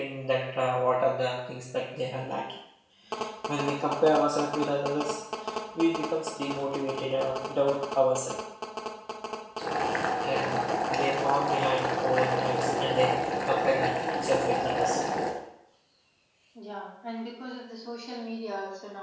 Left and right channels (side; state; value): both; identical; correlation 1.00